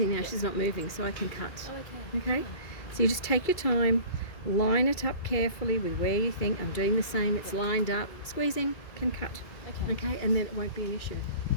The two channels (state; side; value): late; right; 2.3 ms